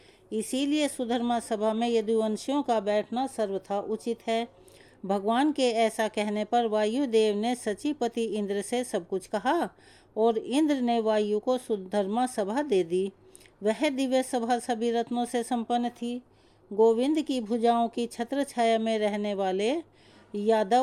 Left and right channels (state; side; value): identical; both; correlation 1.00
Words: इसीलिए सुधर्मा सभा में यदुवंशियों का बैठना सर्वथा उचित है। भगवान के ऐसा कहने पर वायुदेव ने सचीपति इंद्र से सब कुछ कहा और इंद्र ने वायु को सुधर्मा सभा दे दी। वह दिव्य सभा सभी रत्नों से संपन्न थी। गोविंद की भुजाओं की छत्र छाया में रहने वाले